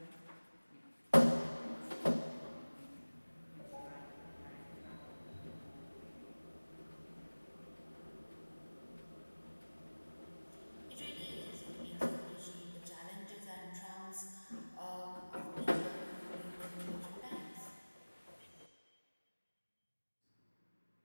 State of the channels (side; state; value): both; inverted; correlation -1.00